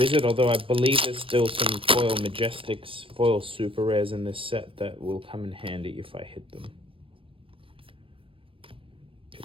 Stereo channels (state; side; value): late; left; 0.26 ms